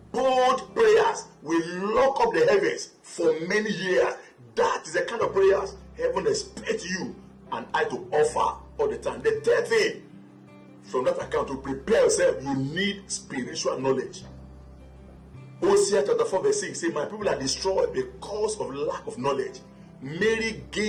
Bold prayers, we lock up the heavens for many years. That is the kind of prayers heaven expects you and I to offer all the time. The third thing from that account, to prepare yourself, you need spiritual knowledge. Hosea chapter 4 verse 6 say, my people are destroyed because of lack of knowledge. Mary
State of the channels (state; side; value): identical; both; correlation 1.00